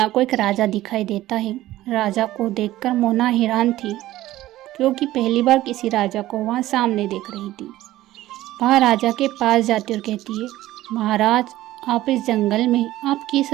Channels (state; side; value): quieter; left; 15.5 dB